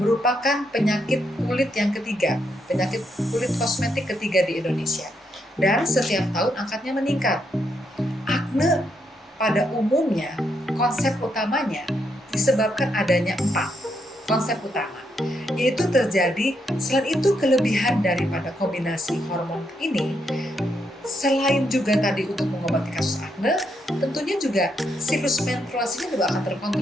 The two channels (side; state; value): both; normal; correlation 0.78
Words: penyakit kulit yang ketiga, penyakit kulit kosmetik ketiga di Indonesia. Dan setiap tahun angkanya meningkat. Akne pada umumnya, konsep utamanya disebabkan adanya 4 konsep utama, yaitu terjadi. Selain itu, kelebihan daripada kombinasi hormon ini, selain juga tadi untuk mengobati kasus akne, tentunya juga siklus menstruasinya juga akan